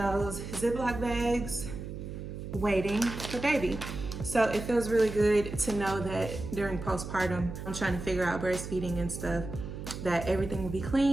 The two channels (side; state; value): right; noise; hum, 8 dB below the sound